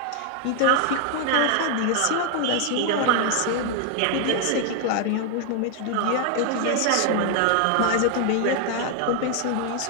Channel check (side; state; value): both; different; correlation 0.00